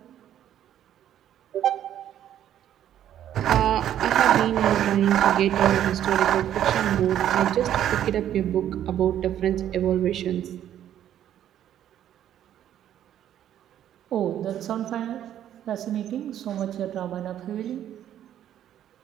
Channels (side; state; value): left; quieter; 10.9 dB